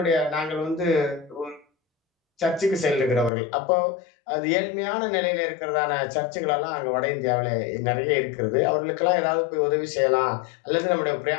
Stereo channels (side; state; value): right; drops out; at 3.3 s